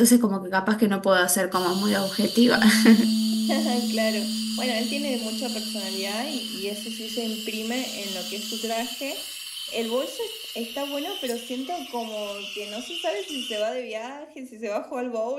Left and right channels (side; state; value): both; identical; correlation 1.00